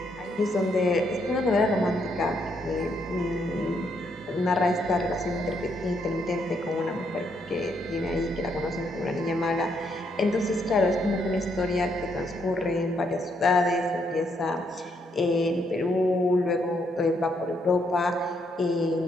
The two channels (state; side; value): normal; both; correlation 0.74